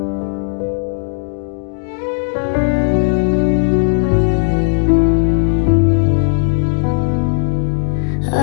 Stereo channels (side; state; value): right; silent; digital silence